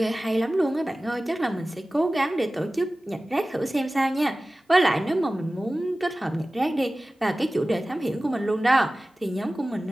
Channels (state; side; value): normal; both; correlation 0.97